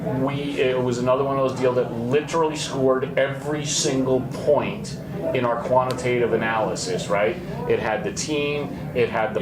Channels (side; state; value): both; identical; correlation 1.00